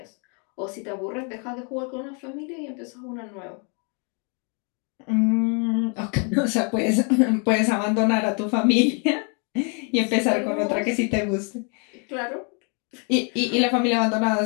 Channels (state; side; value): quieter; right; 37.2 dB